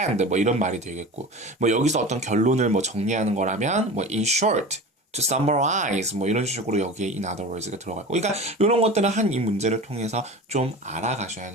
뭐 이런 말이 되겠고 뭐 여기서 어떤 결론을 뭐 정리하는 거라면 뭐 in short to summarize 뭐 이런 식으로 여기에 in other words가 들어가고 그러니까 이런 것들은 한 이 문제를 통해서 좀 알아가셔야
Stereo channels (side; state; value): both; normal; correlation 0.33